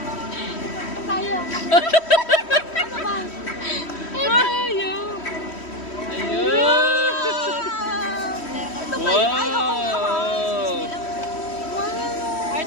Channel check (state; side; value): late; right; 3.1 ms